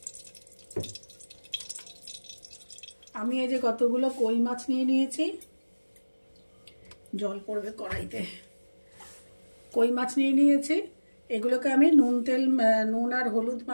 আমি এই যে কতগুলো কই মাছ নিয়ে নিয়েছি, জল পড়বে কড়াইতে। কই মাছ নিয়ে নিয়েছি, এগুলোকে আমি নুন আর হলুদ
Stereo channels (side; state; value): both; inverted; correlation -1.00